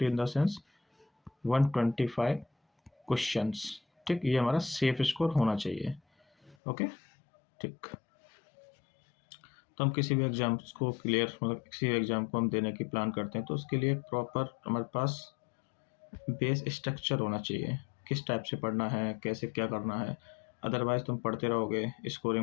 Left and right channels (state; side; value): drops out; right; at 6.6 s